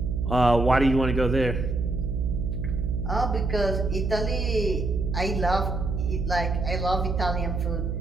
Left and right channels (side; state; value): right; noise; hum, 2 dB below the sound